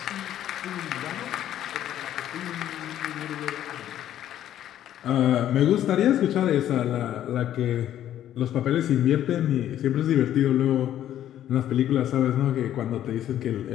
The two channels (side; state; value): right; quieter; 11.6 dB